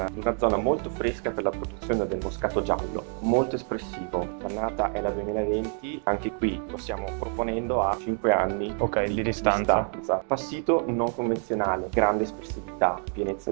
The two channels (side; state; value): left; quieter; 36.8 dB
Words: una zona molto fresca per la produzione del moscato giallo, molto espressivo. L'annata è la 2020, anche qui lo stiamo proponendo a 5 anni Ok, di distanza. Passito non convenzionale, grande espressività, pienezza